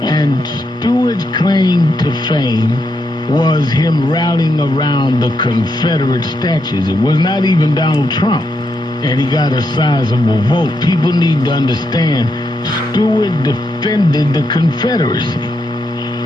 And Stewart's claim to fame was him rallying around the Confederate statues. It was not even Donald Trump. And he got a sizable vote. People need to understand Stewart defended the Confederacy.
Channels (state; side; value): normal; both; correlation 0.81